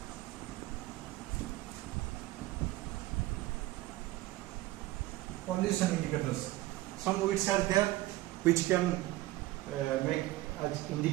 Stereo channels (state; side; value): quieter; left; 17.5 dB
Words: Some weeds are there which can make as